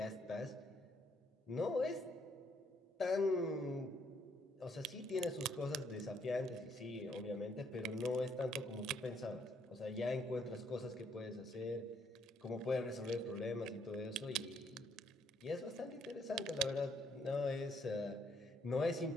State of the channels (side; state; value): both; normal; correlation 0.70